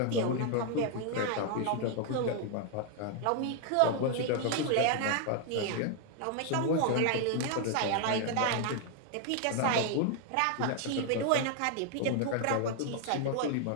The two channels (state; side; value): different; both; correlation 0.00